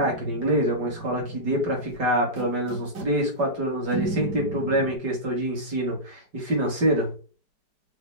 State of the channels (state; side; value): late; left; 5.1 ms